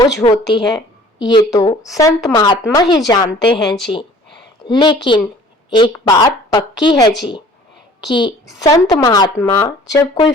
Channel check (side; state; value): both; normal; correlation 0.51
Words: होती है, ये तो संत महात्मा ही जानते हैं जी। लेकिन एक बात पक्की है जी कि संत महात्मा जब कोई